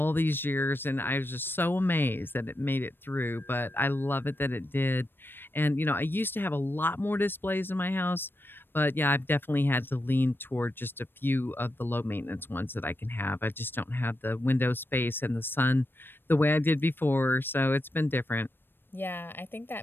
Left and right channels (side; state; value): right; late; 0.099 ms